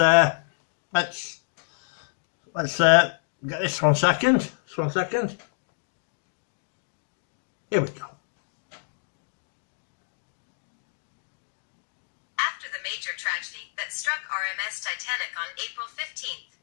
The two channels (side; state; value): right; silent; digital silence